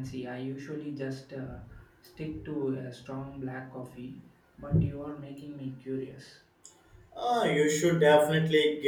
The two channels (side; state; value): both; identical; correlation 1.00